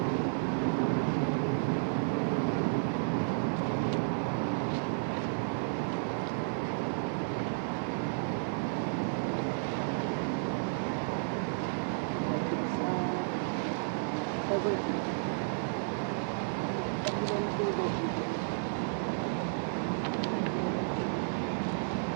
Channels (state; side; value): silent; left; digital silence